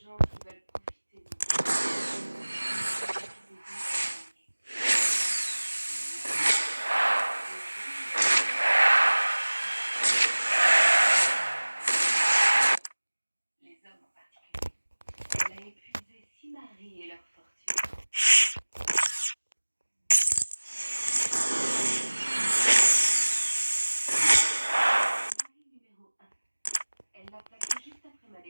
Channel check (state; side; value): inverted; both; correlation -1.00